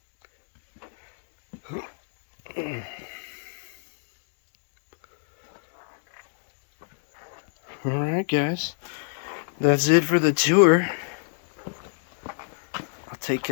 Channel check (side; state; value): right; silent; digital silence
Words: Alright guys, that's it for the tour. I'll take